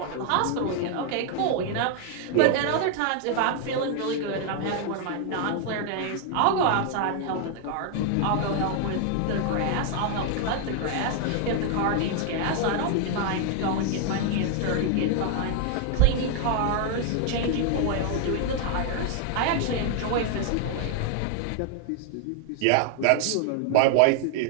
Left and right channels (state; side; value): different; both; correlation 0.00